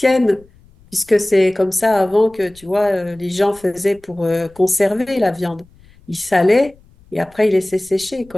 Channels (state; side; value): noise; left; rumble, 28 dB below the sound